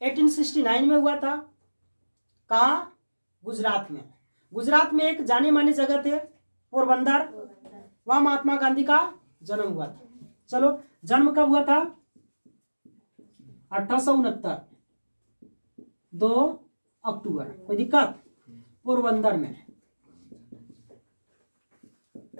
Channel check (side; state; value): both; inverted; correlation -1.00